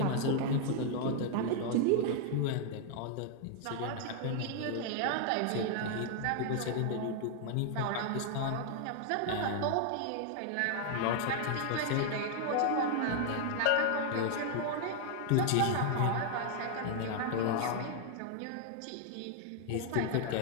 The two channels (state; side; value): different; both; correlation 0.00